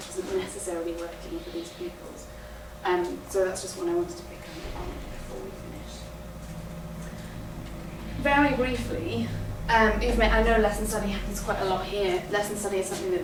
doesn't necessarily working for these pupils. So that's just what I wanted to pick up on before we finish. Very briefly, I know lesson study happens quite a lot here. Lesson study is something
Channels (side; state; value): both; identical; correlation 1.00